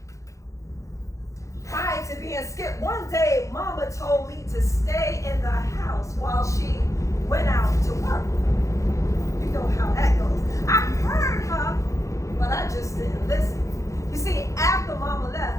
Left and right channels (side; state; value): right; late; 0.15 ms